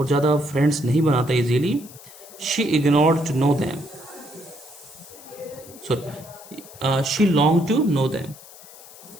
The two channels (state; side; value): noise; left; hiss, 19 dB below the sound